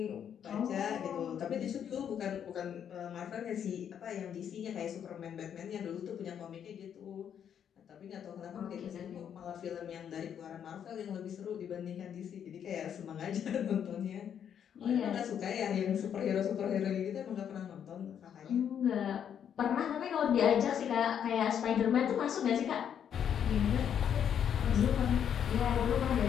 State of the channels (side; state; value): right; quieter; 8.7 dB